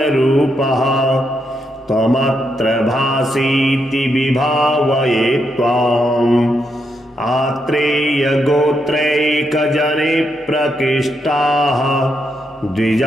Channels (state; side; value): normal; both; correlation 0.81